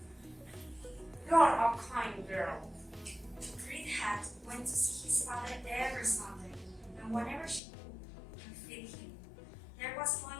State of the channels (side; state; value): right; drops out; at 7.6 s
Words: You are a kind girl. Red Hat went to see his father every Sunday, and whenever she could and fed him, there was